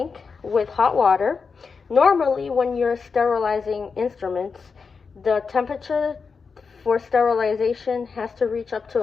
with hot water. Normally, when you're sterilizing instruments, the temperature for sterilization has to reach up to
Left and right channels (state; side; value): quieter; right; 5.2 dB